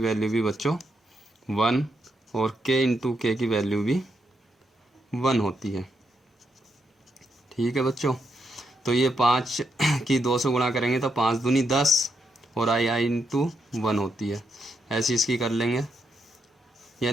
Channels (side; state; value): both; normal; correlation 0.80